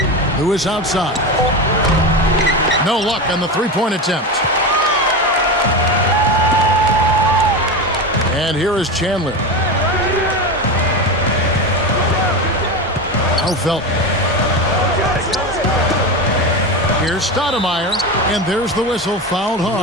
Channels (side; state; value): both; normal; correlation 0.21